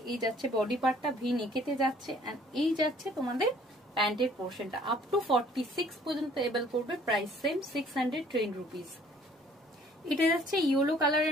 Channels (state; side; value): normal; both; correlation 0.57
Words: এই যাচ্ছে বডি পার্টটা ভি নেকেতে যাচ্ছে। এন্ড এই যাচ্ছে তোমাদের প্যান্টের পোর্শনটা, আপ টু 46 পর্যন্ত এবেল করবে। Price same 610 rupees. এটা যাচ্ছে ইয়েলো